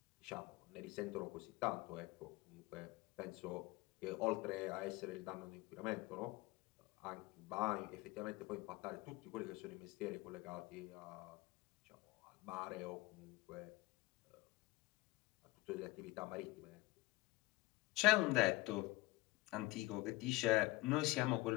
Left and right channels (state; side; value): quieter; right; 20.4 dB